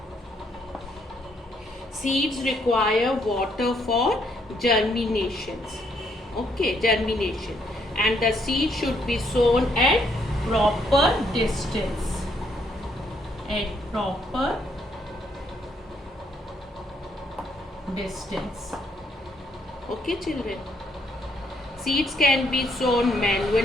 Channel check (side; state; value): both; normal; correlation 0.71